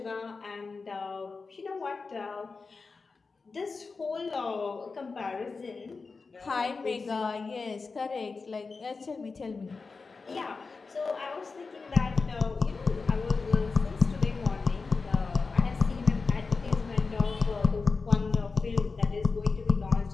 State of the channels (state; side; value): quieter; right; 4.4 dB